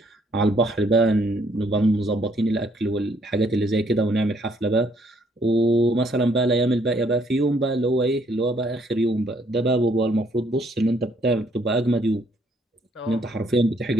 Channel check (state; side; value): normal; both; correlation 0.67